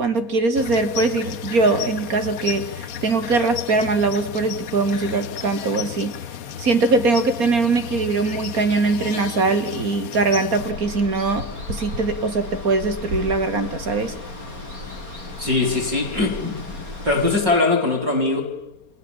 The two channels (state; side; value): late; left; 4.3 ms